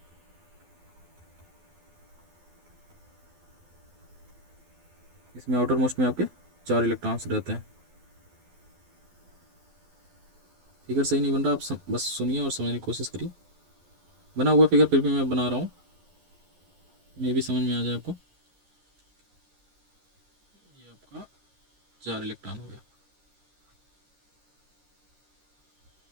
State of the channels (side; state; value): left; late; 12 ms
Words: इसमें आउटर मोस्ट में आपके 4 इलेक्ट्रॉन्स रहते हैं। फिगर सही नहीं बन रहा, आप बस सुनिए और समझने की कोशिश करिए। बना हुआ फिगर फिर भी मैं बना रहा हूँ, ये भी समझ में आ जाए आपको।